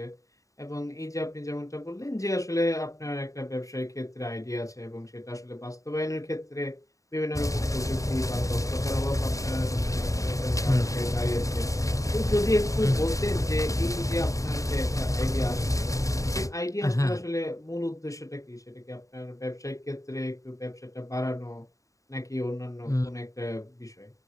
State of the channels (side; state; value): right; late; 0.16 ms